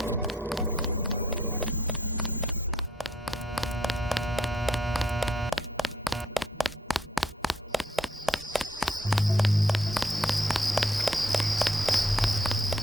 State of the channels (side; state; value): both; normal; correlation 0.68